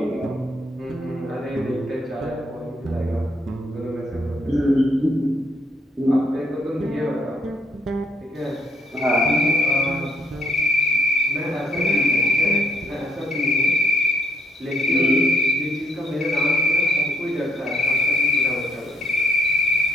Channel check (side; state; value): both; normal; correlation 0.71